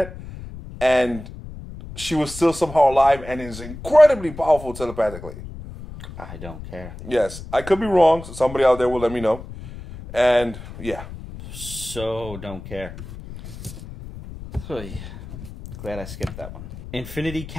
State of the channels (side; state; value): left; noise; rumble, 13 dB below the sound